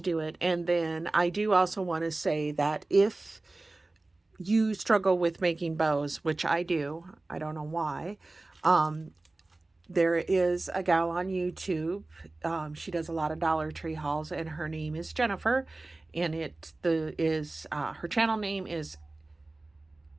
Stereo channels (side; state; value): left; quieter; 3.0 dB